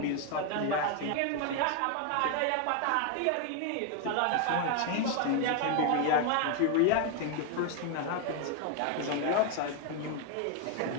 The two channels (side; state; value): both; different; correlation 0.01